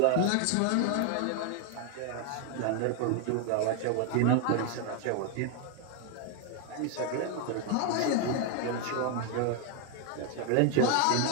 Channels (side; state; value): both; different; correlation 0.00